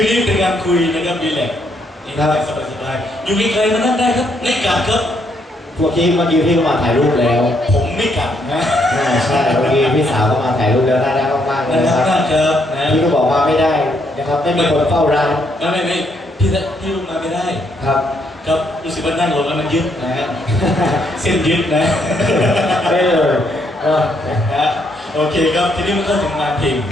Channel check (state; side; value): normal; both; correlation 0.73